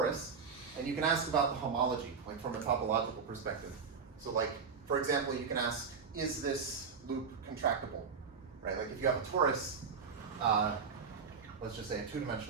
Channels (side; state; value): left; quieter; 5.7 dB